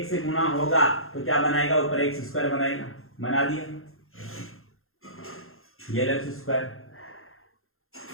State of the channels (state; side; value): late; right; 0.61 ms